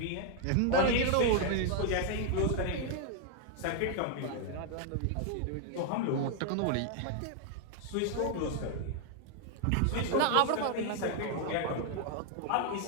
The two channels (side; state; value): both; different; correlation 0.00